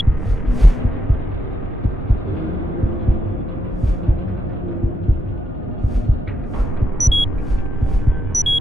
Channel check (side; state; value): both; normal; correlation 0.81